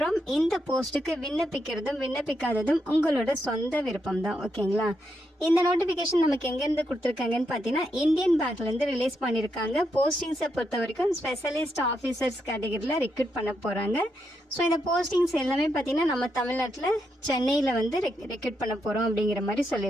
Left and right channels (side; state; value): both; normal; correlation 0.81